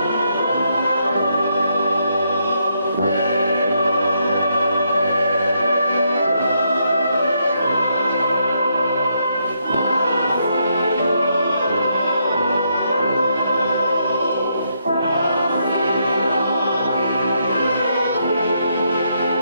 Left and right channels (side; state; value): both; inverted; correlation -0.77